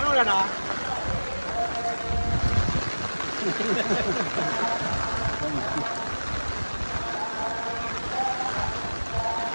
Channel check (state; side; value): inverted; both; correlation -1.00